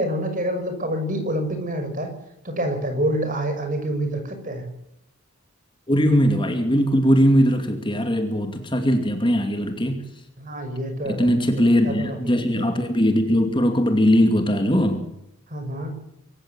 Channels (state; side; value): normal; both; correlation 0.78